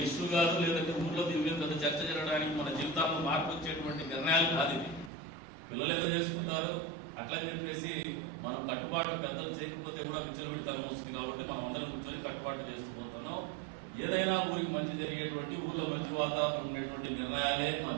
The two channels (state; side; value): drops out; left; at 5.1 s